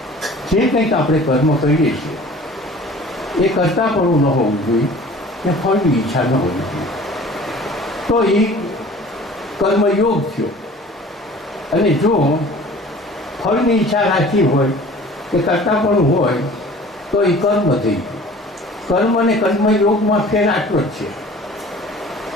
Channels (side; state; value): both; normal; correlation 0.46